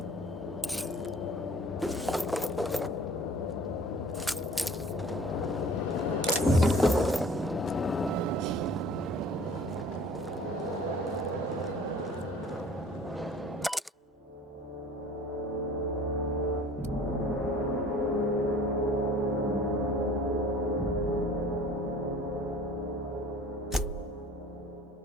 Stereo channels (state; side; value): normal; both; correlation 0.48